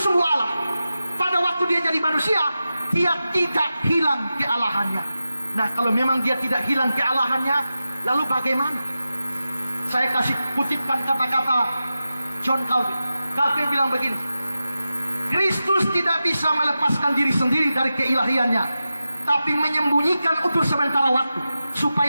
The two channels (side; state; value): both; inverted; correlation -0.92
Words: Allah. Pada waktu dia jadi manusia, dia tidak hilang kealahannya. Nah, kalau memang dia tidak hilang kealahannya, lalu bagaimana? Saya kasih kutipkan kata-kata John Calvin. Calvin bilang begini, Kristus tidak bisa melepaskan diri sendiri dari keilahiannya, tapi menyembunyikan untuk sementara waktu,